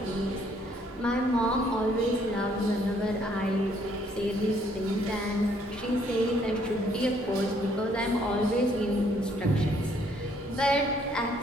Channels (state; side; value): normal; both; correlation 0.65